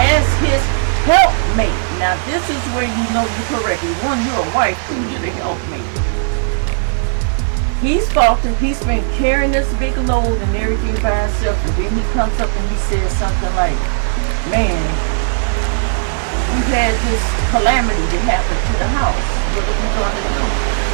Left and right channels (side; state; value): left; silent; 59 dB below the other